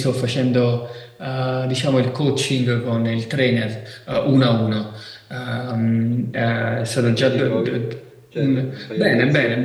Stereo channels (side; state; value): both; identical; correlation 1.00